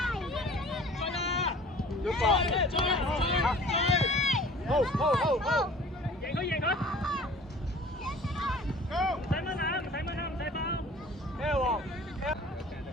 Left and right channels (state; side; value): normal; both; correlation 0.47